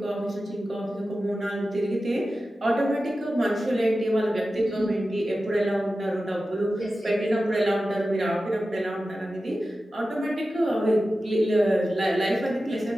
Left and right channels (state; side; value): normal; both; correlation 0.94